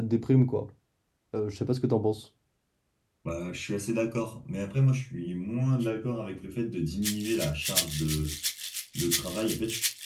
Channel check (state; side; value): identical; both; correlation 1.00